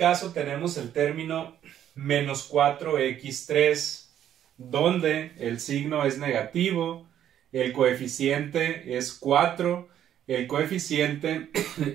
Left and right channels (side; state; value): left; quieter; 10.6 dB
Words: tenemos el término menos 4x3, donde el signo es negativo, el coeficiente es 4, el coeficiente